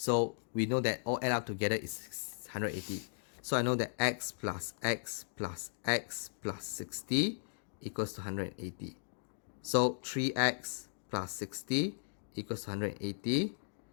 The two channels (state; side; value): silent; right; digital silence